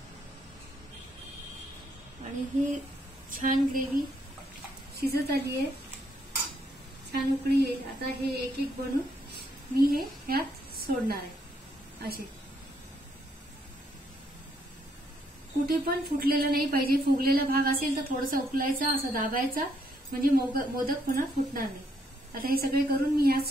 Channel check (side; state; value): both; normal; correlation 0.72